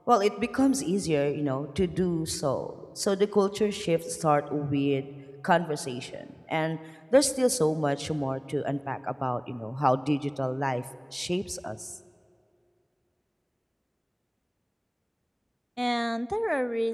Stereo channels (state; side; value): identical; both; correlation 1.00